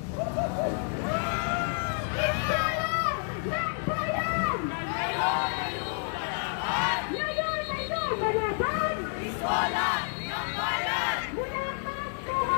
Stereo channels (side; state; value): right; silent; 58 dB below the other